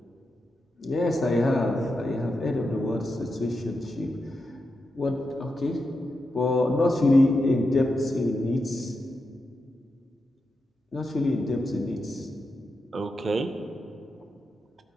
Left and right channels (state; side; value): normal; both; correlation 0.87